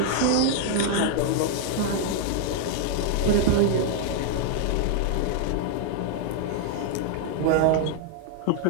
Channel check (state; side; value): different; both; correlation 0.00